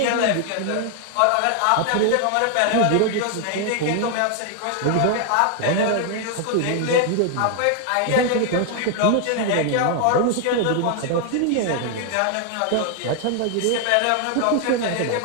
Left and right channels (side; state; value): both; different; correlation 0.00